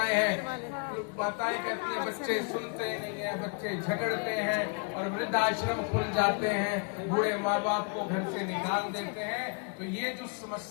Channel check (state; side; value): quieter; right; 35.7 dB